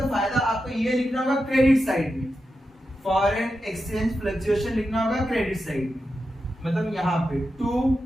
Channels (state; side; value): normal; both; correlation 0.89